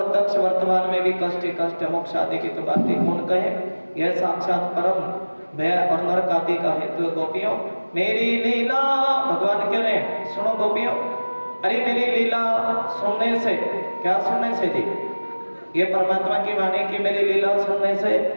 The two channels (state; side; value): inverted; both; correlation -1.00